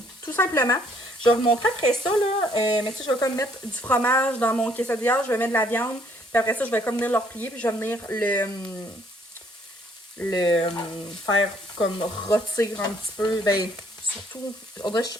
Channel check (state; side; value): normal; both; correlation 0.65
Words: Tout simplement. Je vais vous montrer après ça, là. Mais tu sais, je vais comme mettre du fromage dans mon quesadilla. Je vais mettre de la viande. Puis après ça, je vais comme venir le replier. Puis je vais venir le faire comme rôtir un petit peu. Ben, surtout, on dirait que